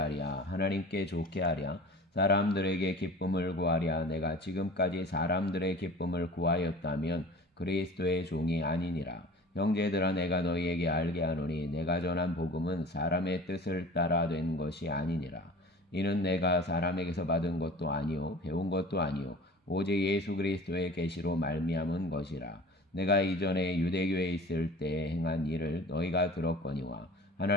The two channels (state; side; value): normal; both; correlation 0.41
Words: 하나님께 좋게 하랴 사람들에게 기쁨을 구하랴 내가 지금까지 사람들의 기쁨을 구하였다면 그리스도의 종이 아니니라. 형제들아 내가 너희에게 알게 하노니 내가 전한 복음은 사람의 뜻을 따라 된 것이 아니니라. 이는 내가 사람에게서 받은 것도 아니요 배운 것도 아니요 오직 예수 그리스도의 계시로 말미암은 것이라. 내가 이전에 유대교에 있을 때 행한 일을 너희가 들었거니와